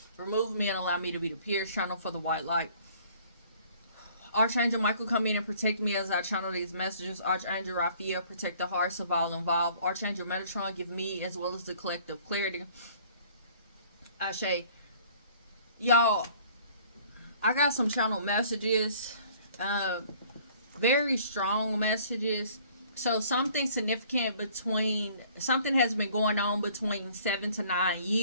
Remove me and allow me to be the pierced channel for the white light. Archangel Michael, come in and protect me as I channel these messages. Archangel Raphael, protect the hearts of all involved. Archangel Metatron, give me as well as the collective clarity. Ashe. Y'all, I got some channel messages, very strong messages. So something significant something has been going on between 7 to 9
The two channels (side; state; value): both; inverted; correlation -0.55